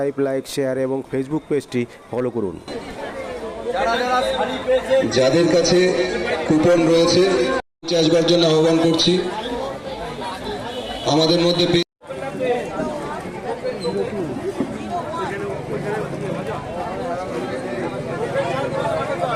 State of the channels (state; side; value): identical; both; correlation 1.00